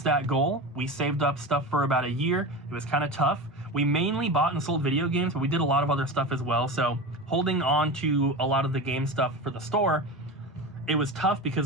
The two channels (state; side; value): normal; both; correlation 0.26